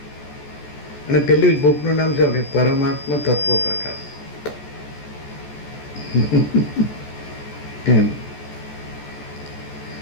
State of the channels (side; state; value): right; late; 14 ms